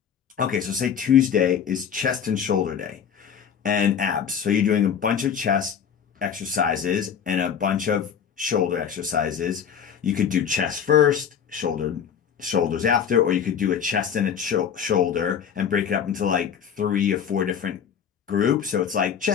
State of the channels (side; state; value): right; quieter; 7.8 dB